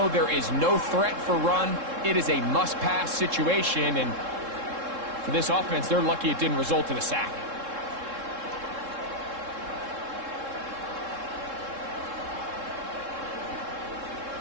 there is no threat for run. It is a must-pass situation, and for this offense, they're lucky it didn't result in a sack.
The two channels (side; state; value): left; late; 3.7 ms